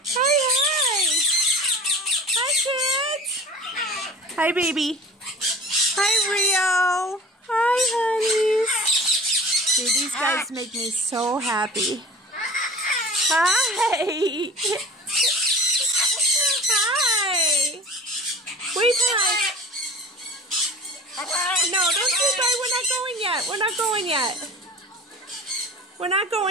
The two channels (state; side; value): normal; both; correlation 0.40